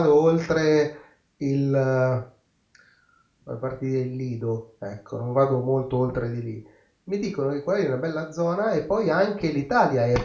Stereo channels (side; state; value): both; identical; correlation 1.00